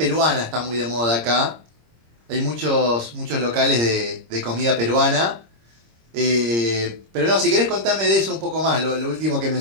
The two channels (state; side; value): late; left; 26 ms